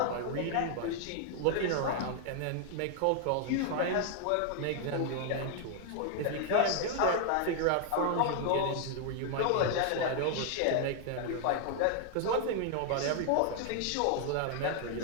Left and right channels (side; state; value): both; different; correlation 0.00